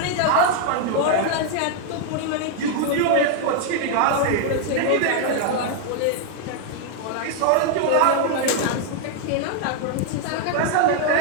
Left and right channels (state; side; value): different; both; correlation 0.00